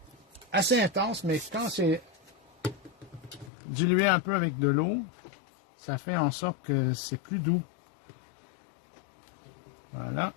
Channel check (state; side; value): drops out; right; at 3.5 s